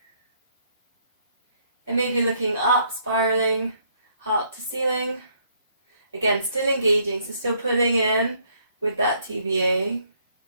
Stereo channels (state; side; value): inverted; both; correlation -0.68